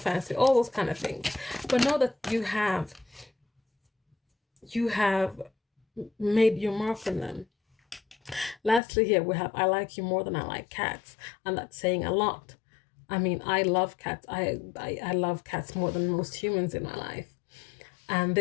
All those kind of things. But know that you have made your mark on them. Lastly, here we have, I like you more than I like cats. And that's saying a lot. I mean, I love cats. I love cats more than most humans in my life. And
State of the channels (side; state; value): right; drops out; at 8.8 s